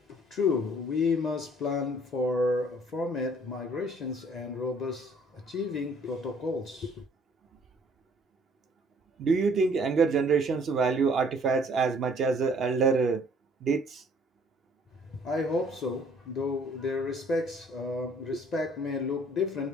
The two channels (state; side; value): normal; both; correlation 0.58